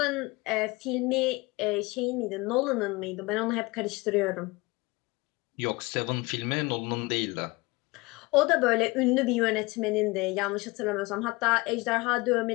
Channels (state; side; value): quieter; right; 23.7 dB